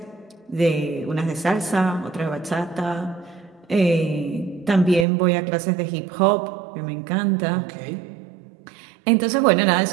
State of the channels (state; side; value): drops out; left; at 5.1 s